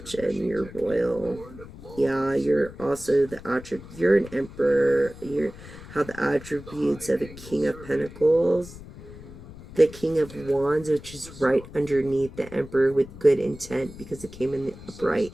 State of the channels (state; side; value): noise; left; rumble, 16 dB below the sound